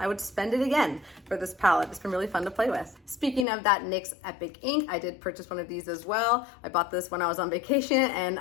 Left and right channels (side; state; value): right; drops out; at 3.5 s